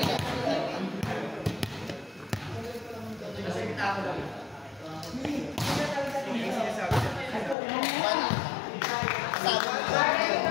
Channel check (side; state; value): right; drops out; at 7.6 s